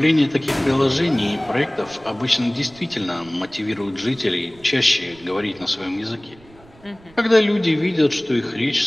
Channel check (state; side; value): noise; right; rumble, 25 dB below the sound